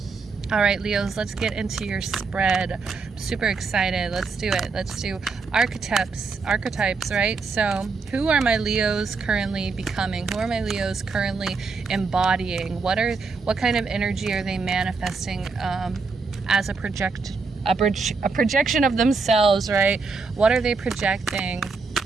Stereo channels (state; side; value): quieter; left; 4.5 dB